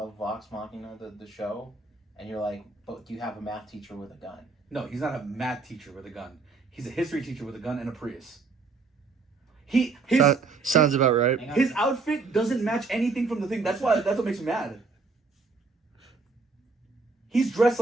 Vox Machina, the show, and you're like, but you have a math teacher with a gun. No, he's not a math teacher with a gun. He's a history teacher with a gun and a Prius. Sounds about right. His outfit doesn't match anything from the thing. That's what makes me mad. He's dressed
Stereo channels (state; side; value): quieter; left; 4.2 dB